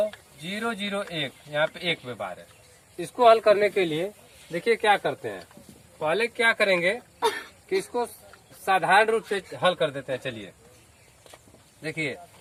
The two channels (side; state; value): both; identical; correlation 1.00